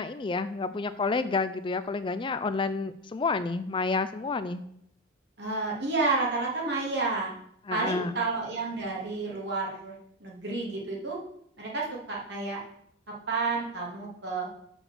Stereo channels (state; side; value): normal; both; correlation 0.10